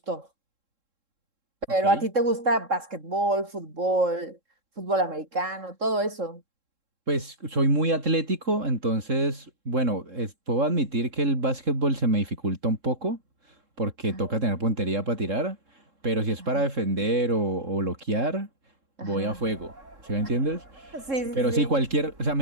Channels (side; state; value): left; late; 3.7 ms